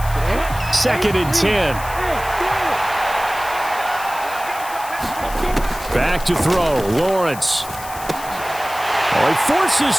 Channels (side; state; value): left; noise; hiss, 14 dB below the sound